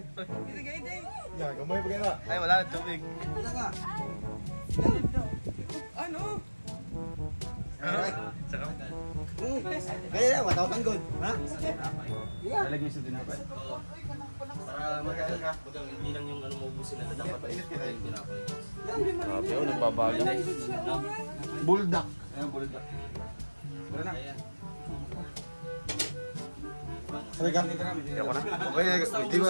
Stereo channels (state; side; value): inverted; both; correlation -1.00